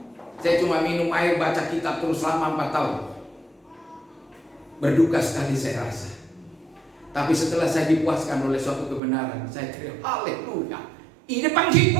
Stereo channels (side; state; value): left; drops out; at 9.0 s